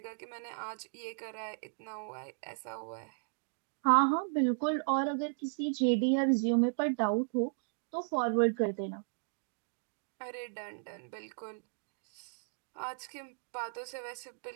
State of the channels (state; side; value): silent; left; digital silence